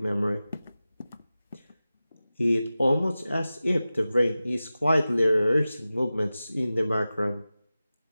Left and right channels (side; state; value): both; inverted; correlation -0.95